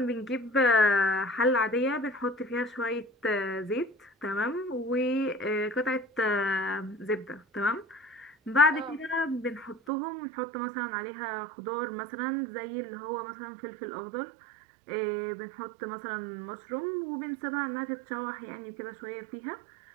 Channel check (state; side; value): drops out; left; at 9.8 s